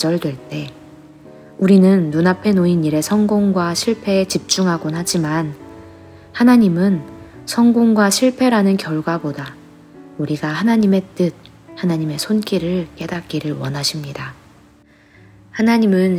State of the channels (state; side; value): identical; both; correlation 1.00